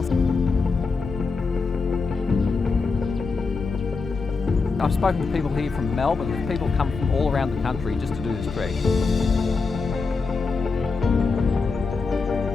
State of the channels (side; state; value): right; quieter; 4.4 dB